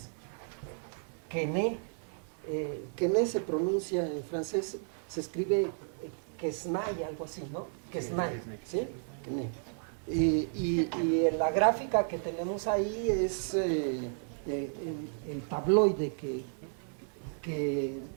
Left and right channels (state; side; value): silent; left; 56 dB below the other